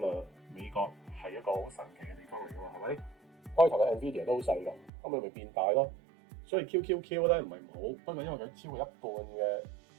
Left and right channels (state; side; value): drops out; left; at 4.9 s